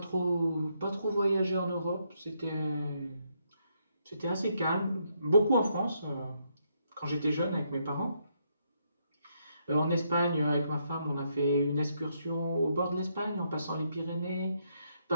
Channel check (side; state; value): both; inverted; correlation -0.76